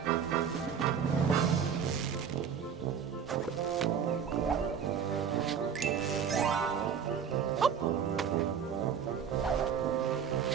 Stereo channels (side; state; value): left; quieter; 7.4 dB